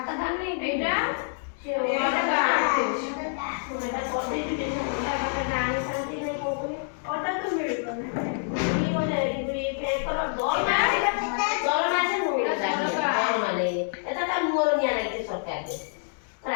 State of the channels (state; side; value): silent; right; digital silence